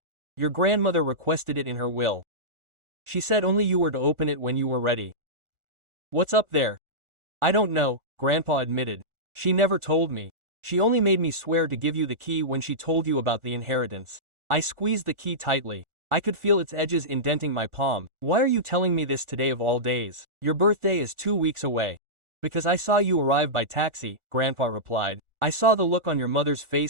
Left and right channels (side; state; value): left; late; 1.4 ms